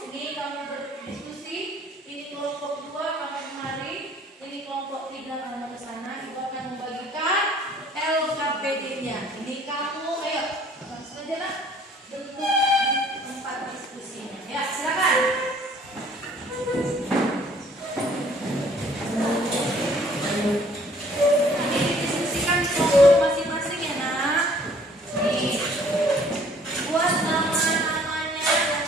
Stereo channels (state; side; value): normal; both; correlation 0.57